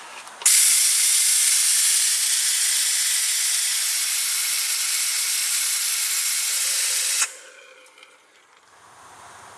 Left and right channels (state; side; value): identical; both; correlation 1.00